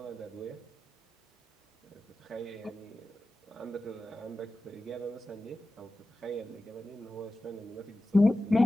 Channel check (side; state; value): both; normal; correlation 0.94